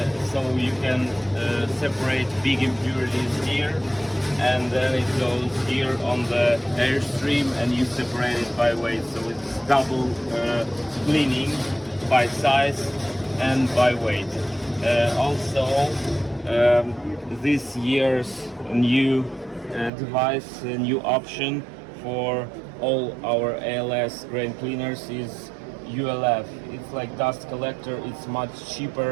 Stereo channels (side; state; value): left; drops out; at 19.9 s